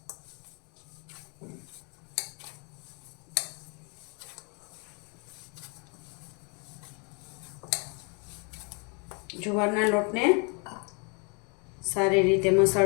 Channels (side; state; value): right; quieter; 34.2 dB